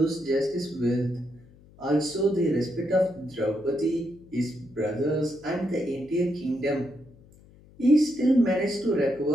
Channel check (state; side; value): noise; left; hum, 25 dB below the sound